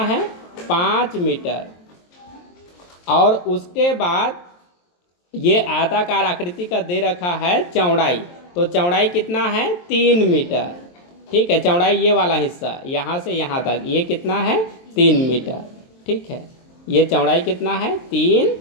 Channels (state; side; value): late; right; 23 ms